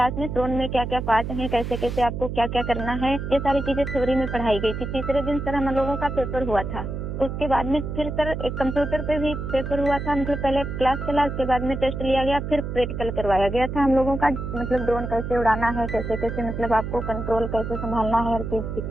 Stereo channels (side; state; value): right; noise; hum, 5 dB below the sound